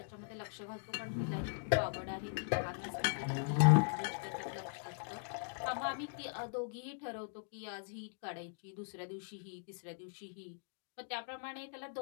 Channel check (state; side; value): silent; right; digital silence